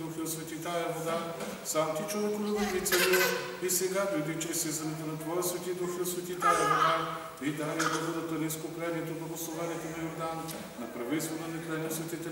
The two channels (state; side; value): identical; both; correlation 1.00